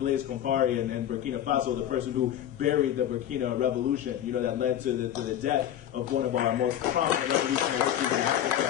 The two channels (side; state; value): right; quieter; 11.1 dB